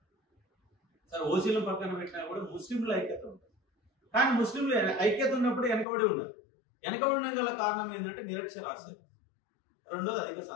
సరే ఓసీల పక్కన పెట్టినా కూడా ముస్లింల ఐక్యత ఉంటుంది. కానీ ముస్లింలు ఐక్యత ఉన్నప్పుడు వెనకబడి ఉండదు. వెనకబడిన గల కారణం ఏంటంటే నిరక్షరాస్యత, రెండోది అధిక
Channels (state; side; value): drops out; right; at 5.9 s